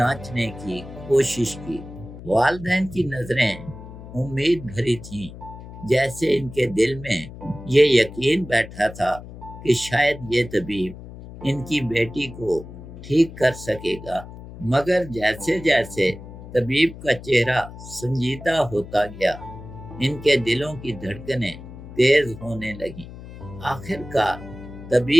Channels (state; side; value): noise; left; hum, 14 dB below the sound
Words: کی کوشش کی۔ والدین کی نظریں امید بھری تھیں، جیسے ان کے دل میں یہ یقین بیٹھا تھا کہ شاید یہ طبیب ان کی بیٹی کو ٹھیک کر سکے گا۔ مگر جیسے جیسے طبیب کا چہرہ سنجیدہ ہوتا گیا، ان کے دلوں کی دھڑکنیں تیز ہونے لگیں۔ آخر کار